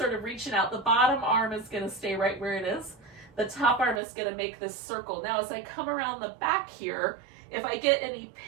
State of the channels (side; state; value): left; drops out; at 4.0 s